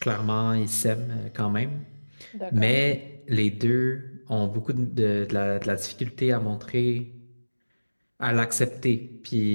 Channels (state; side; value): inverted; both; correlation -1.00